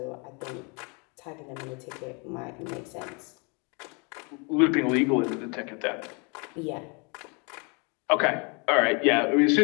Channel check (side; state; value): right; quieter; 32.7 dB